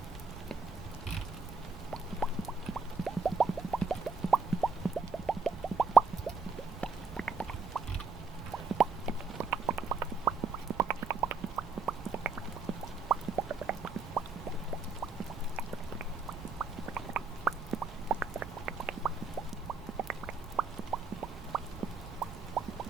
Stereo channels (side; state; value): left; quieter; 4.6 dB